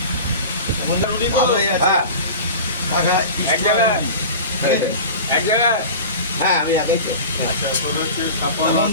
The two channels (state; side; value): inverted; both; correlation -0.34